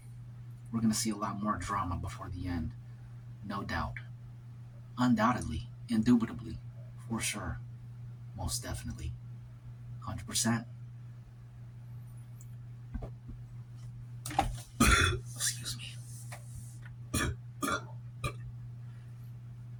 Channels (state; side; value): identical; both; correlation 1.00